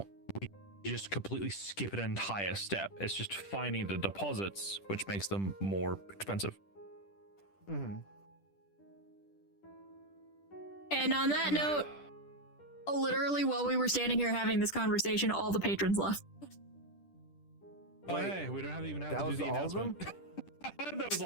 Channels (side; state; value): right; late; 10 ms